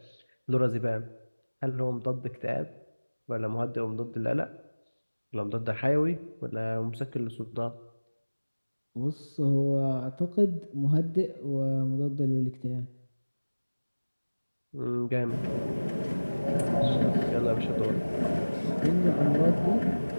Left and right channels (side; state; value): both; inverted; correlation -1.00